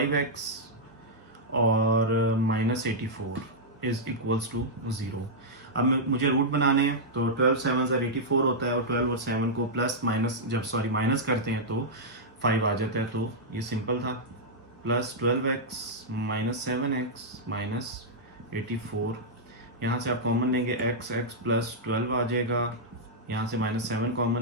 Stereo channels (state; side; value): normal; both; correlation -0.08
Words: और -84 इज इक्वल्स टू 0। अब मुझे रूट बनाने हैं, तो 12 7 84 होता है, और 12 और 7 को माइनस करते हैं तो 5 आ जाता है। तो ये सिंपल था। +12x - 7x -84, यहाँ से आप कॉमन लेंगे x + 12 आ जाएगा, यहाँ से -7